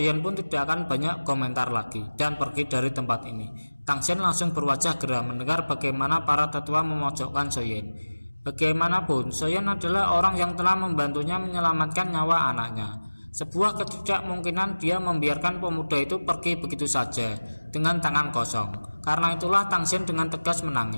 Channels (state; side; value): inverted; both; correlation -1.00